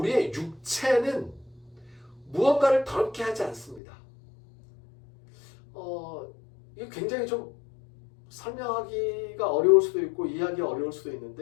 육체는 무언가를 더럽게 하지 않습니다. 이게 굉장히 좀 설명하기가 어려울 수도 있고 이해하기가 어려울 수도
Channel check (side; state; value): right; drops out; at 3.8 s